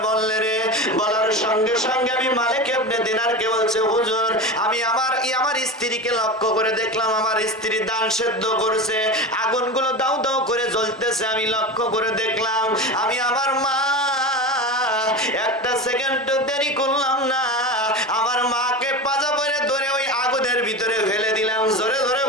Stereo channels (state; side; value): normal; both; correlation 0.26